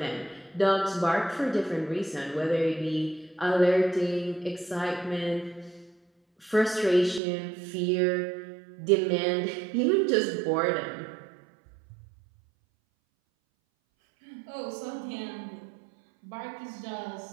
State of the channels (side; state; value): left; drops out; at 7.2 s